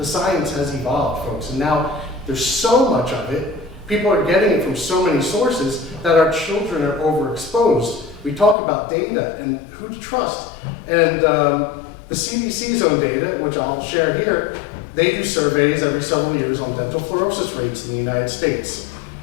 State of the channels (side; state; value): right; drops out; at 8.6 s